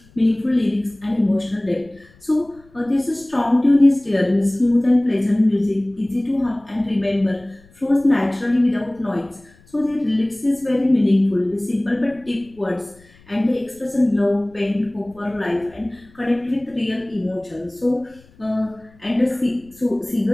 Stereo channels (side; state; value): left; noise; rumble, 28 dB below the sound